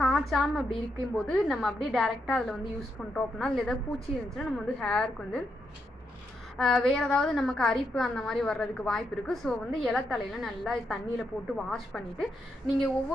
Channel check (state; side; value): normal; both; correlation 0.81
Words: காய்ச்சாமல் அப்படி இருக்கும்போது நம்ம அப்படியே டேரெக்டாக அதில் வந்து யூஸ் பண்ணுறோம் அப்படின்னா அதில் ஏதாவது பூச்சி இருந்துச்சுன்னா நம்ம வந்து ஹேருக்கு வந்து வேறு ஏதாவது நமக்கு அரிப்பு அந்த மாதிரி வர்றதுக்கு வாய்ப்பு இருக்குது. ஸோ வந்து இலத்தலையில் நல்லா தண்ணியில் போட்டு வாஷ் பண்ணிவிட்டு நீங்கள்